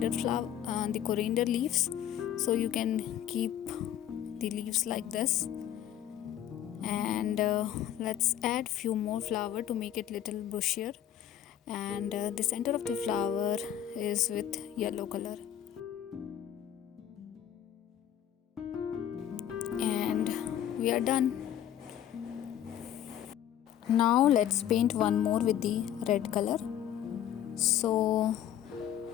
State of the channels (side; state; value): right; quieter; 10.8 dB